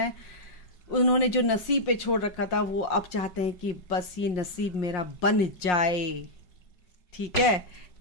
उन्होंने जो नसीब पे छोड़ रखा था वो अब चाहते हैं कि बस ये नसीब मेरा बन जाए। ठीक है,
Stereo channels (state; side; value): late; right; 5.6 ms